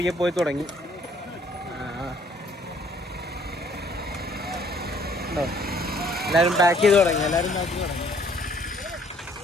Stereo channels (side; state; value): both; normal; correlation 0.61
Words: പോയി തുടങ്ങി. ഉണ്ടോ, എല്ലാവരും പാക്ക് ചെയ്ത് തുടങ്ങി.